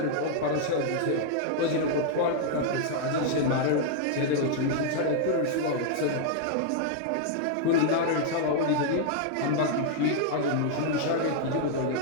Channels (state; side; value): different; both; correlation -0.01